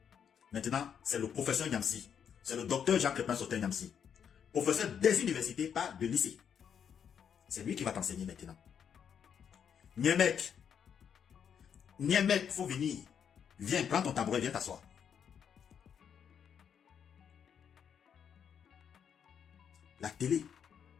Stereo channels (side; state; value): right; quieter; 7.9 dB